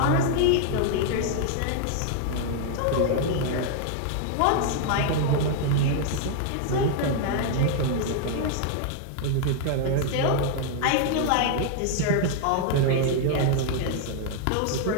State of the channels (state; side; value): different; both; correlation 0.00